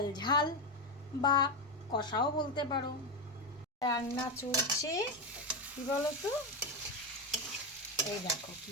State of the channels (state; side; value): normal; both; correlation 0.10